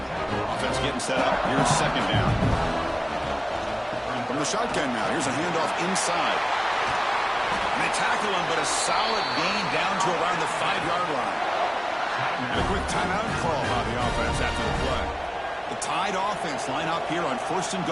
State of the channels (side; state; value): both; identical; correlation 1.00